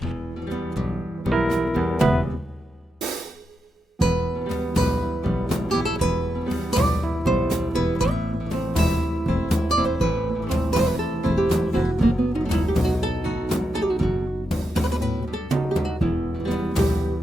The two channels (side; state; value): both; normal; correlation 0.86